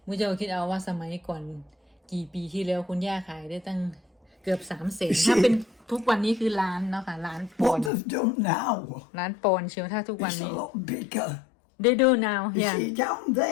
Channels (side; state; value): right; drops out; at 7.9 s